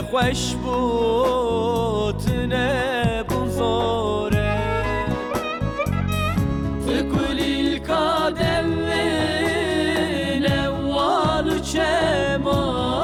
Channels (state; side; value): identical; both; correlation 1.00